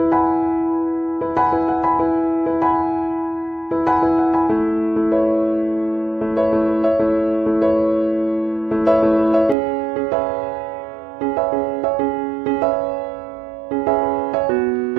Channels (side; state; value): left; drops out; at 9.6 s